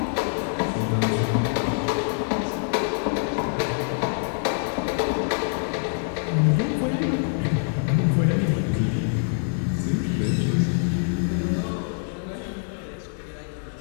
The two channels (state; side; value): silent; right; digital silence